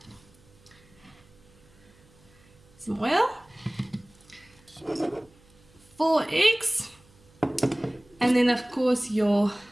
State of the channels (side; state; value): right; noise; hum, 29 dB below the sound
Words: some oil, 4 eggs, and then of course your